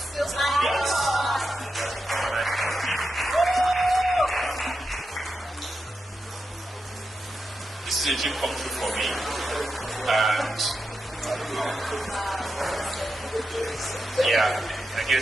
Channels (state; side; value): normal; both; correlation 0.88